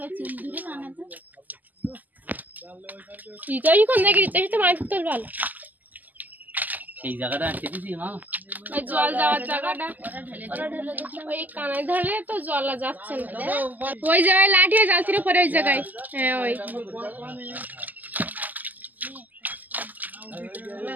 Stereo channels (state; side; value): late; left; 0.083 ms